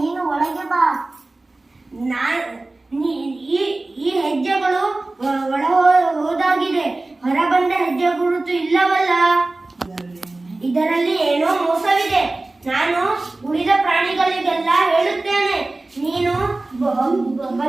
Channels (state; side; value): quieter; left; 3.0 dB